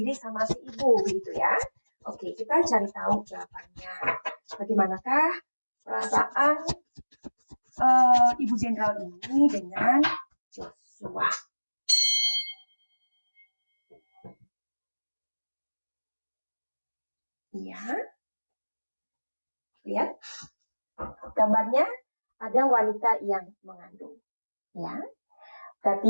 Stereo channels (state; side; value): inverted; both; correlation -1.00